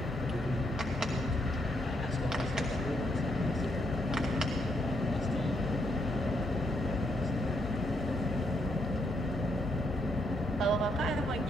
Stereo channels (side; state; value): both; normal; correlation 0.76